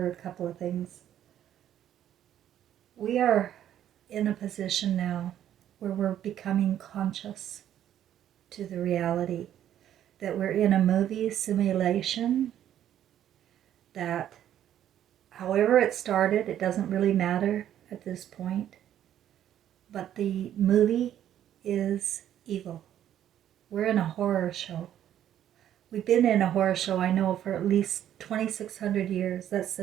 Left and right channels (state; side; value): quieter; left; 10.9 dB